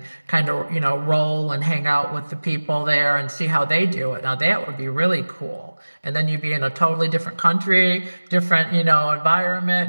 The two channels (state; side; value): inverted; both; correlation -1.00